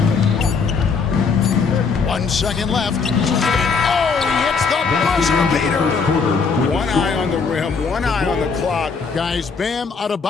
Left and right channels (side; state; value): right; quieter; 5.2 dB